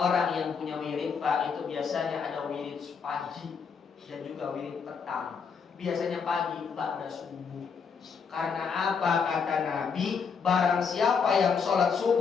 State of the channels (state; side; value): quieter; right; 6.0 dB